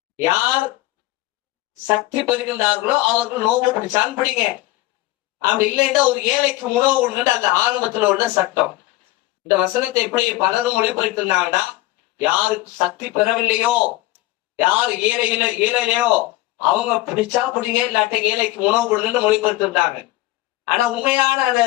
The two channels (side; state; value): right; quieter; 17.9 dB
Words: யார் சக்தி பெறுகின்றார்களோ அவர்கள் நோன்பு பிடிச்சான் பிடிங்க, அப்படி இல்லைன்னா ஒரு ஏழைக்கு உணவு கொடுங்க, அந்த ஆரம்பத்துல உள்ள சட்டம். இந்த வசனத்தை எப்படி பலரும் மொழிபெயர்த்திருந்தாங்கன்னா, யாருக்கு சக்தி பெறவில்லையோ, யார் ஏழையிலையோ அவங்க பிடிச்சா பிடிங்க, இல்லாட்ட ஏழைக்கு உணவு கொடுங்கன்னு மொழிபெயர்த்திருந்தாங்க. ஆனா உண்மையான அந்த